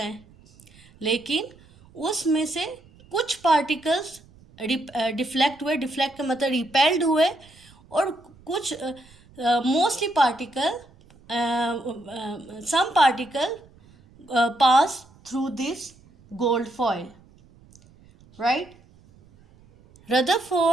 लेकिन उसमें से कुछ पार्टिकल्स डिफ्लेक्ट हुए. डिफ्लेक्ट का मतलब रिपेल्ड हुए. और कुछ mostly particle, some particle pass through this gold foil, right.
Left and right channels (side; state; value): right; noise; rumble, 27 dB below the sound